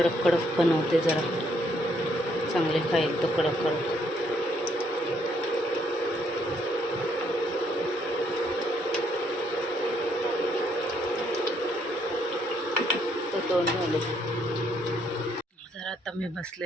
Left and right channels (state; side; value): normal; both; correlation 0.71